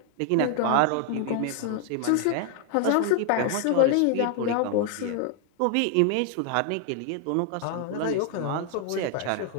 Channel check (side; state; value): both; different; correlation 0.00